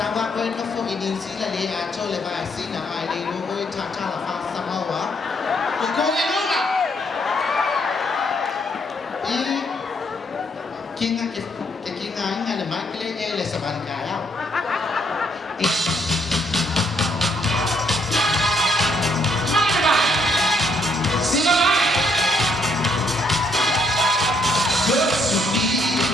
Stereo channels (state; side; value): normal; both; correlation 0.72